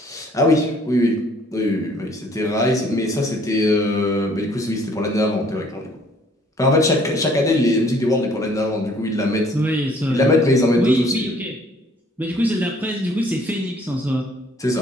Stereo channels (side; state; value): both; normal; correlation 0.59